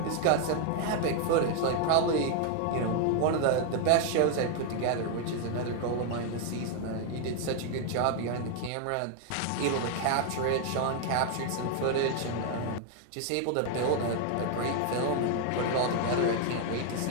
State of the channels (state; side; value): different; both; correlation 0.00